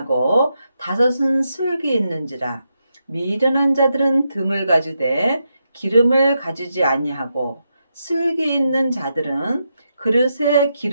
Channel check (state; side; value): inverted; both; correlation -0.84